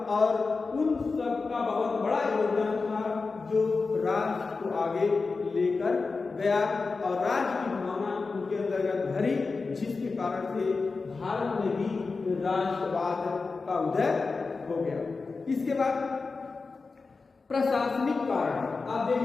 और उन सब का बहुत बड़ा योगदान था जो राष्ट्र को आगे लेकर गया और राष्ट्र की भावना उनके अंतर्गत भरी, जिसके कारण से भारत में भी राष्ट्रवाद का उदय हो गया। इसके बाद प्रशासनिक कारण आप देख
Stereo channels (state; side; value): quieter; right; 4.2 dB